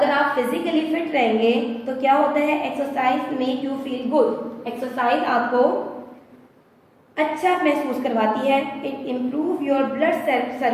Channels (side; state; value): both; identical; correlation 1.00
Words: आप फिजिकली फिट रहेंगे तो क्या होता है, exercise make you feel good. Exercise आपको अच्छा महसूस करवाती है। It improve your blood